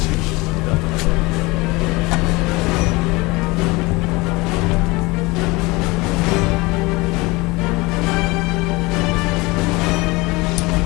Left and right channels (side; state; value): right; quieter; 23.7 dB